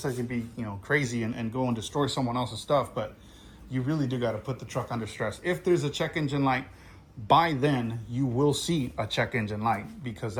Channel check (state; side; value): identical; both; correlation 1.00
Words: be, you know, crazy and go and destroy someone else's stuff, but you really do got to put the truck under stress. If there's a check engine light, by then you will see a check engine light, because